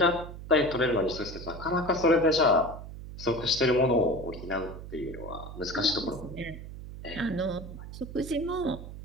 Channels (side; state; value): right; noise; hum, 12 dB below the sound